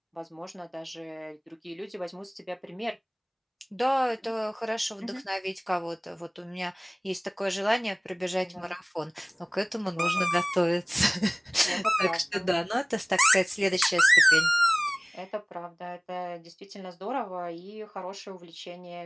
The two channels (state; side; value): identical; both; correlation 1.00